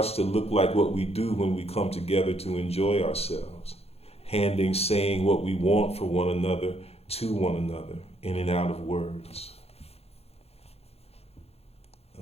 to look like what we do when we come together to enjoy ourselves, handing saying what we want for one another to one another, in and out of words.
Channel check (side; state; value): right; late; 0.29 ms